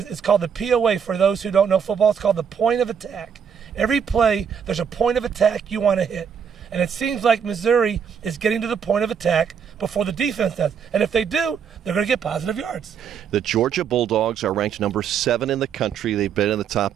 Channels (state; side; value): quieter; left; 7.3 dB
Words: it's called the POA for those who don't know football. It's called the point of attack. Every play, there's a point of attack you want to hit. And it seems like Missouri is getting to the point of attack before the defense does. And if they do, they're going to get positive yards. The Georgia Bulldogs are ranked number 7 in the country. They've been in the top